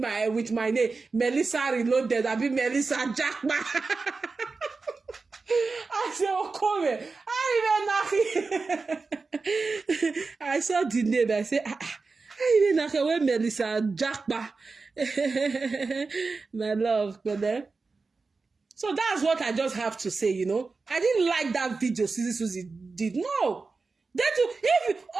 with my name. Melissa Reloaded. I be Melissa Jackman. I said, oh, come here. I saw the name. I said, I even know where Melissa Jackba. My love, brother. So that's what I just have to say, you know. I didn't like that video Suzy did. No.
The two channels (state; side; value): quieter; left; 4.2 dB